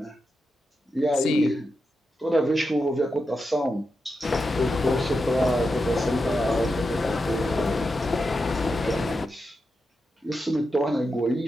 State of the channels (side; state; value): both; normal; correlation 0.88